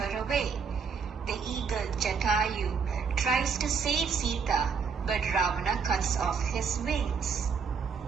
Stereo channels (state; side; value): quieter; left; 5.9 dB